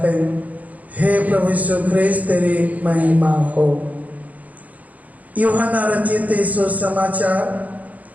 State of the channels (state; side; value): late; left; 0.075 ms